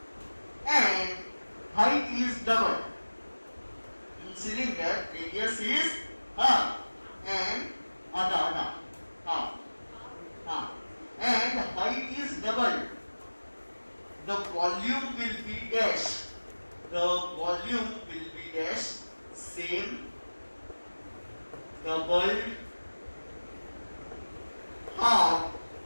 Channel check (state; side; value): inverted; both; correlation -1.00